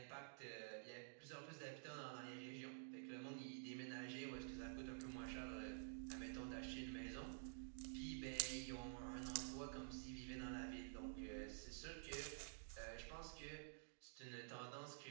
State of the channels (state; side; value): silent; left; digital silence